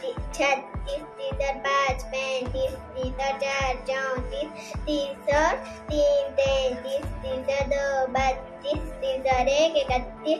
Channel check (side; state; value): both; identical; correlation 1.00